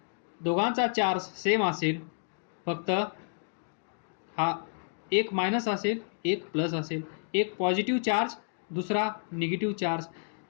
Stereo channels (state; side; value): silent; right; digital silence